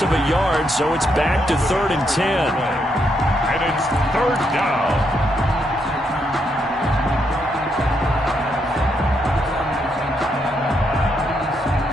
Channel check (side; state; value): both; normal; correlation 0.78